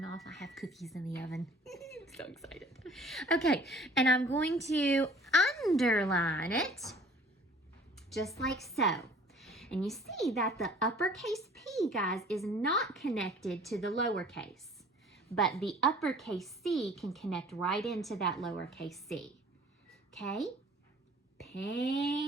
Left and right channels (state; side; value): normal; both; correlation 0.51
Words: off. I have cookies in the oven. I'm so excited. Okay, and I'm going to underline it just like so. And you see that the uppercase P, guys, is not connected to the lowercase, but the uppercase C can connect right into that lowercase c. Okay?